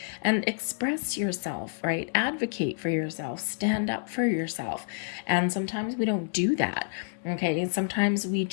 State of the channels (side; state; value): right; silent; digital silence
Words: And express yourself, right? Advocate for yourself, stand up for yourself. And sometimes we don't do that. Okay, and sometimes we